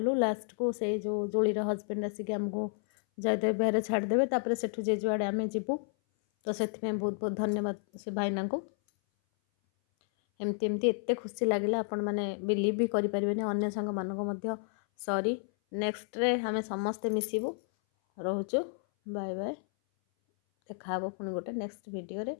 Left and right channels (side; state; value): right; silent; 57 dB below the other